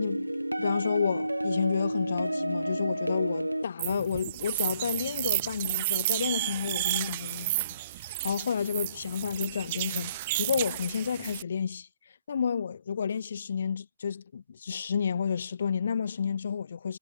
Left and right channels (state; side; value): inverted; both; correlation -0.71